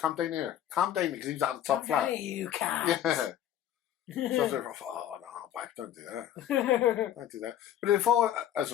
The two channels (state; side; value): quieter; right; 11.0 dB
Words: down here. Come down here because he's at the top flat. Hey, you cat. Yeah. So I was like, oh no, babe, don't do that. Don't do that. But if I, as